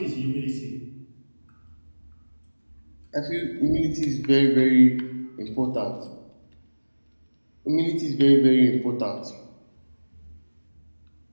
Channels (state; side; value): inverted; both; correlation -1.00